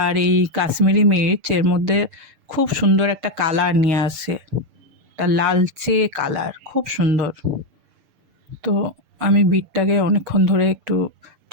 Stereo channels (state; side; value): late; left; 6.8 ms